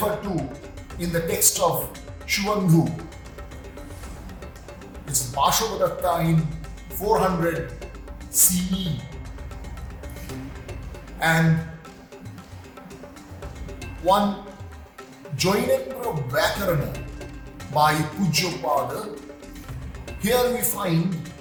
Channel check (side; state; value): both; identical; correlation 1.00